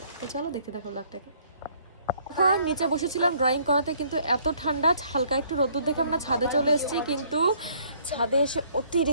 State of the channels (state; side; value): inverted; both; correlation -0.62